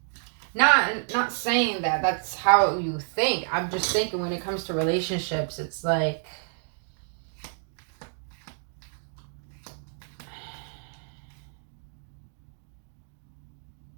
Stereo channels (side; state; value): left; silent; digital silence